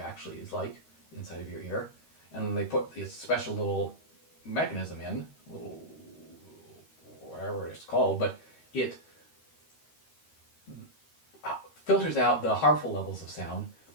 actually is like inside of your ear. And then they put this special little mechanism in, little whatever it's called, but it filters out the harmful levels of sound,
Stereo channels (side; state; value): right; late; 13 ms